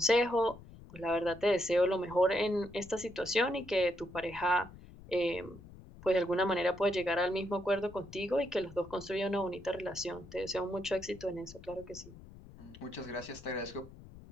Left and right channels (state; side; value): noise; left; rumble, 18 dB below the sound